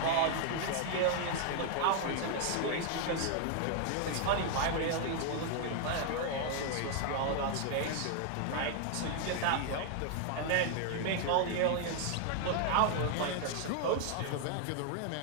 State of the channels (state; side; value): different; both; correlation 0.00